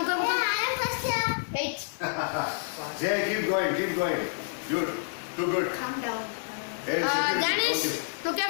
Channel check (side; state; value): right; silent; 59 dB below the other